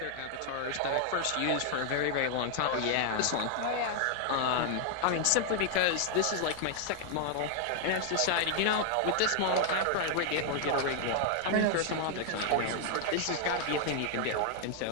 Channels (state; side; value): different; both; correlation 0.00